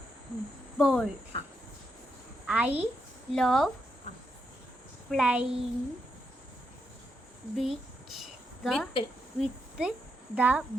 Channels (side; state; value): both; normal; correlation 0.81